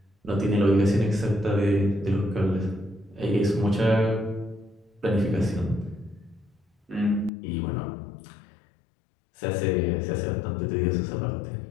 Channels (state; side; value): drops out; right; at 7.3 s